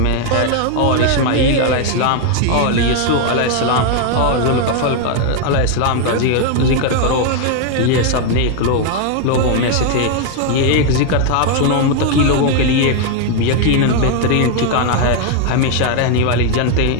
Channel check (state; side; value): different; both; correlation 0.01